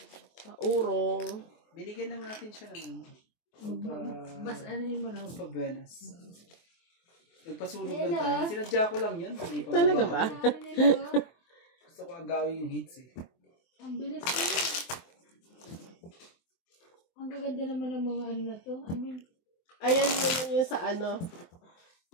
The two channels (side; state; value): right; late; 23 ms